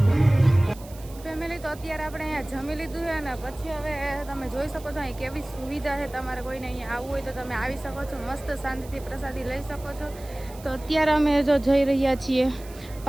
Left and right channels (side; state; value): right; noise; hiss, 20 dB below the sound